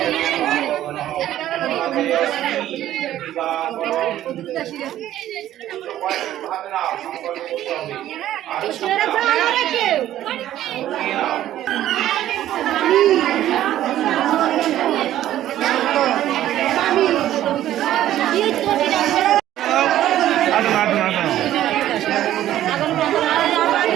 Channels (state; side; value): quieter; left; 12.8 dB